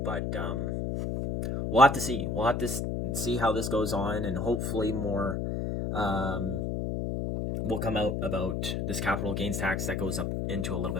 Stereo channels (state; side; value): noise; left; hum, 1 dB below the sound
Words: But we'll have to see. We'll have to see how this goes on, and hopefully more will come out about this capital gains tax that goes up into a little